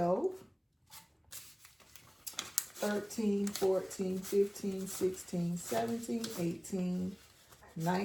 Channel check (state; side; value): identical; both; correlation 1.00